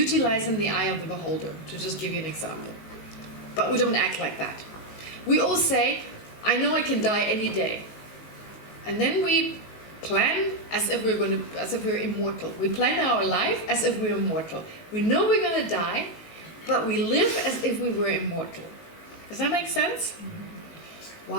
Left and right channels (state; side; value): late; right; 19 ms